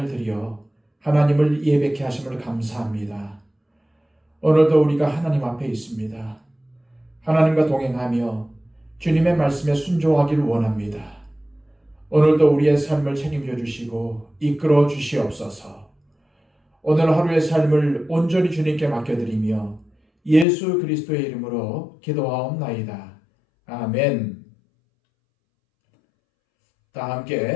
들여 하나님을 예배케 하심을 감사합니다. 오늘도 우리가 하나님 앞에 있습니다. 하나님과 동행하며 주님의 말씀에 순종하기를 원합니다. 오늘도 우리의 삶을 책임져 주시고 이끌어 주시옵소서. 오늘 하루의 삶을 온전히 주님께 맡겨드리며 예수 그리스도의 이름으로 기도하옵나이다. 아멘. 다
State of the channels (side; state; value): right; drops out; at 20.5 s